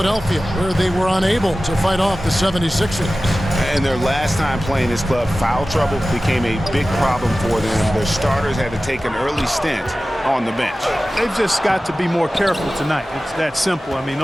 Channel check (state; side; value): normal; both; correlation 0.96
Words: where they were unable to fight off the 76ers. And their last time playing this club, foul trouble became a big problem for them. Their starters had to take an early stint on the bench. They've just got to be more careful tonight. It's that simple. I mean,